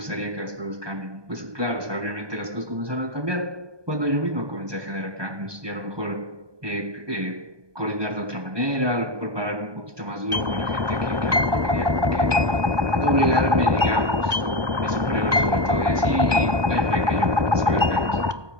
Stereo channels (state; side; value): late; left; 1.2 ms